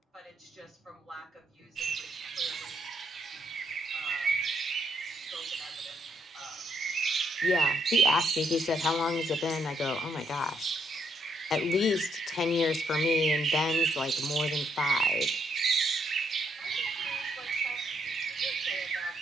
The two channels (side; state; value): both; normal; correlation 0.74